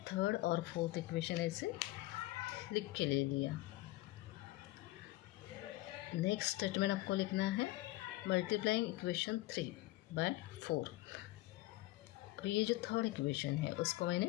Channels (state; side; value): quieter; right; 18.5 dB